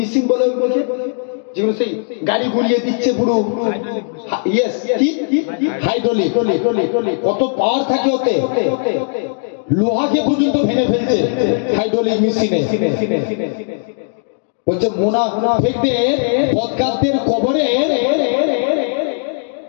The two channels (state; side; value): silent; right; digital silence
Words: বলে ওইগুলোকে, যেগুলো সেই গাড়ি ঘুরিয়ে দিচ্ছে পুরো, ইয়েস, কি হাইড্রোলিক, কত পাওয়ার থাকে ওতে, লোহাকে পর্যন্ত ভেঙে ফেলছে হাইড্রোলিক মেশিনে। বলছে মুনাফিকদের, বদকারদের কবরে